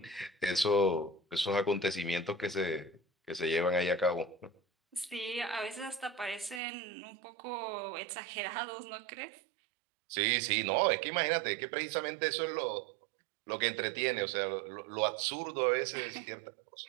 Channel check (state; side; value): drops out; left; at 6.6 s